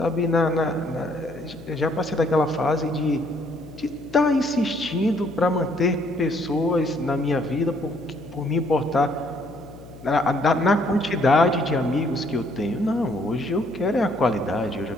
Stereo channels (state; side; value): noise; left; hum, 18 dB below the sound